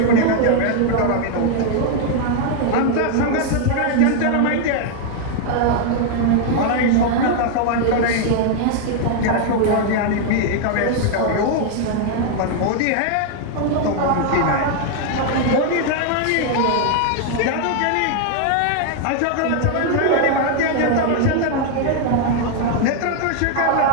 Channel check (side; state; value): both; different; correlation 0.00